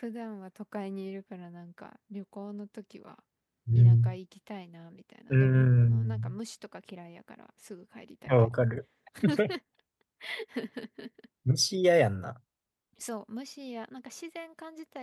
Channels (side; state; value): both; identical; correlation 1.00